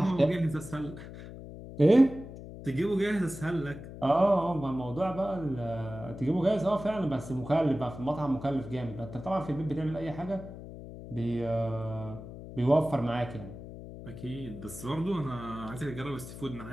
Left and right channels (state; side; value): noise; left; hum, 12 dB below the sound